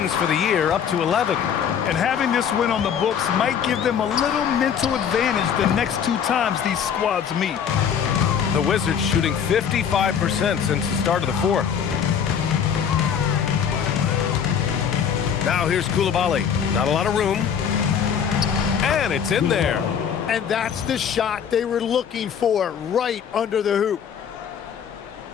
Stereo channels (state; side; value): quieter; right; 7.8 dB